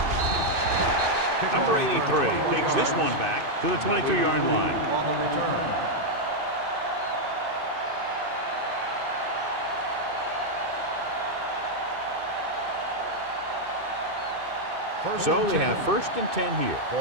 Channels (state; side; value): late; left; 2.6 ms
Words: Number 83 takes this one back to the 22-yard line. On the return. So they have 1st and 10 here.